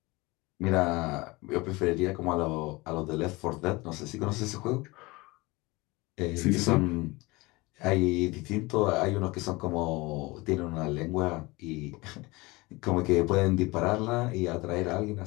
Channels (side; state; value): right; quieter; 23.1 dB